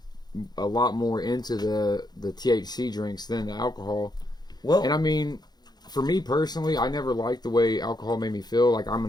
a lot more into the THC drinks than the alcohol. Well, And I mean, for me personally, I never liked the way alcohol made me feel. Like, I'm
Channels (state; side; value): late; right; 0.20 ms